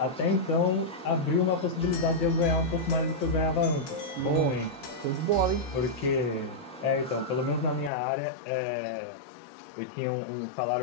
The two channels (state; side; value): drops out; right; at 7.9 s